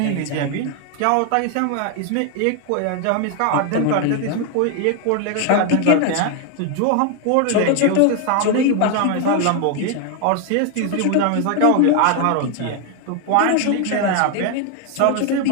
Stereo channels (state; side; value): different; both; correlation 0.01